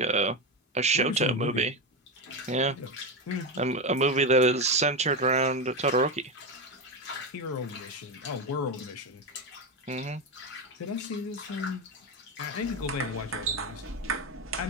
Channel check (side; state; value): both; normal; correlation 0.13